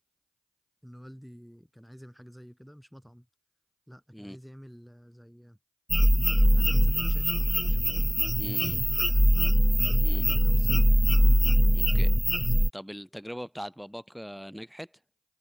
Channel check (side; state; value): both; identical; correlation 1.00